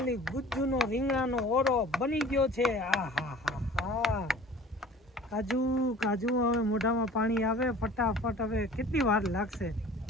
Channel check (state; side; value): normal; both; correlation 0.46